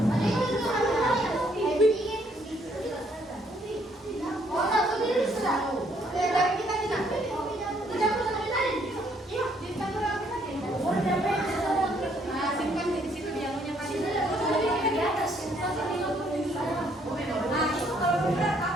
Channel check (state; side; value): normal; both; correlation 0.68